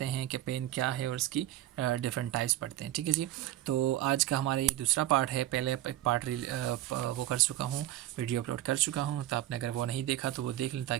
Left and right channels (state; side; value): quieter; left; 13.8 dB